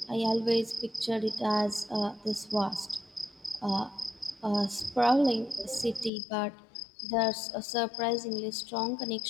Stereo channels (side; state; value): right; drops out; at 6.1 s